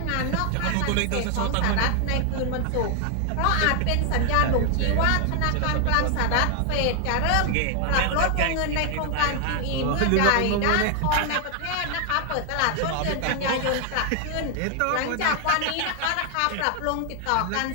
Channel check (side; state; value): both; different; correlation 0.00